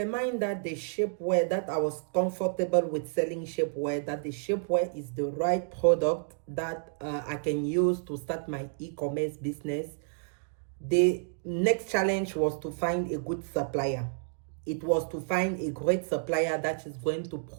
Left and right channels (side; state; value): left; silent; digital silence